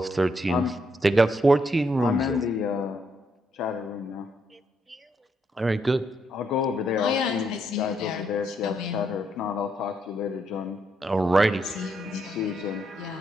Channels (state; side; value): normal; both; correlation 0.76